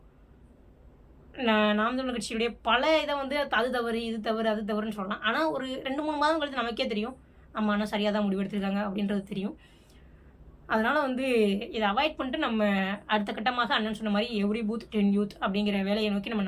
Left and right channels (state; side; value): identical; both; correlation 1.00